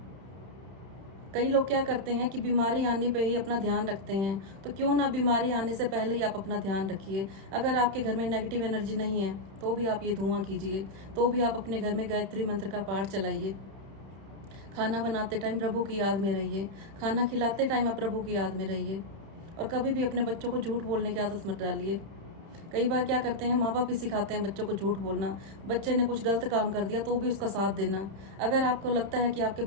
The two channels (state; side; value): late; left; 31 ms